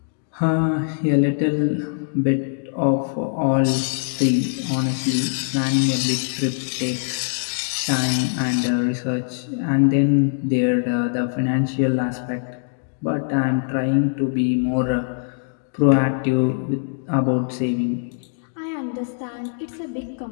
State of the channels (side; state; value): right; silent; digital silence